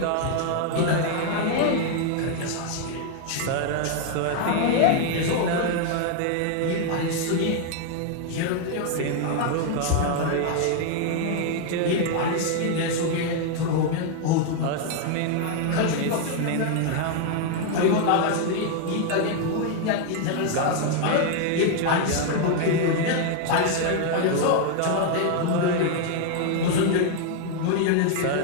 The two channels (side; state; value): both; different; correlation 0.00